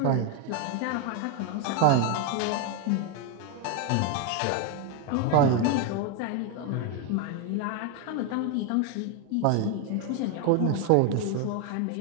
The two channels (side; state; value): both; different; correlation 0.01